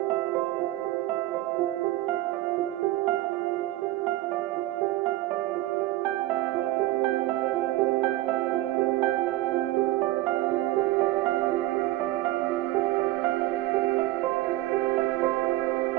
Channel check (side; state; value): left; quieter; 16.6 dB